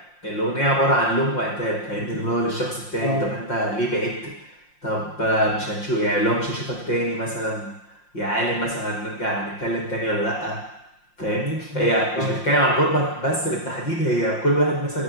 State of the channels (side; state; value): right; late; 5.7 ms